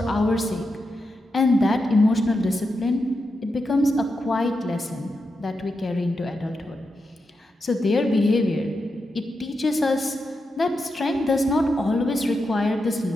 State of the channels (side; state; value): both; normal; correlation 0.87